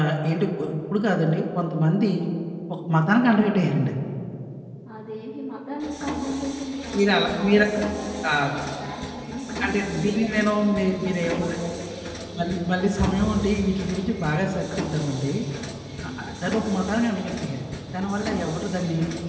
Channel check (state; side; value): identical; both; correlation 1.00